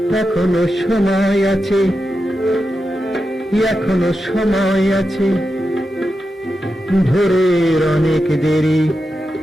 এখনো সময় আছে, এখনো সময় আছে, ভোরের অনেক দেরি।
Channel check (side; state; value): both; normal; correlation 0.89